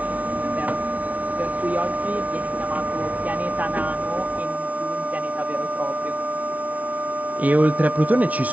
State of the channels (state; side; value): late; left; 0.070 ms